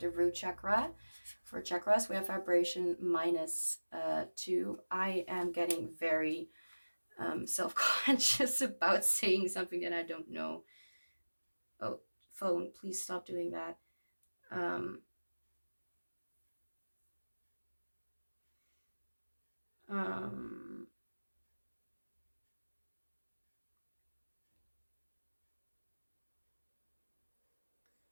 root chakra. For chakras, we have vibration -2. I am getting very self-conscious about saying something that I don't know. Oh, phone, please stop doing that.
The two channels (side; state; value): both; inverted; correlation -1.00